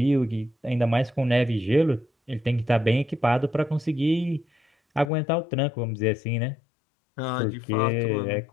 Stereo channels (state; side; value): drops out; right; at 5.1 s